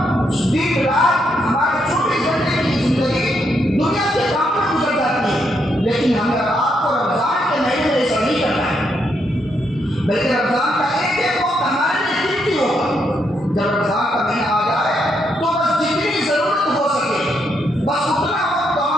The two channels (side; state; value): both; normal; correlation 0.77